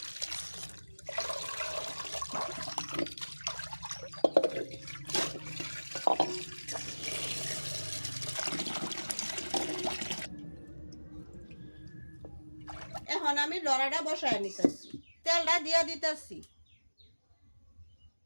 এখন আমি লড়াটা বসায় নিতেছি, তেলটা দিয়া দিতেছি।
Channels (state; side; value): inverted; both; correlation -1.00